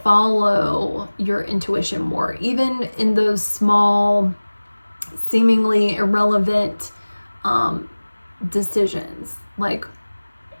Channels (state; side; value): inverted; both; correlation -1.00